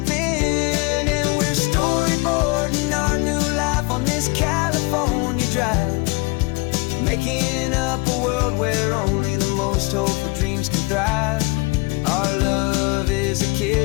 And we're storyboarding our new life on this California drive, making up a world where only the most hopeful dreams can thrive. Our love is a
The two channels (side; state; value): right; quieter; 26.4 dB